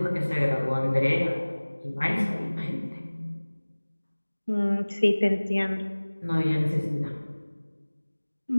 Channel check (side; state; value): both; inverted; correlation -1.00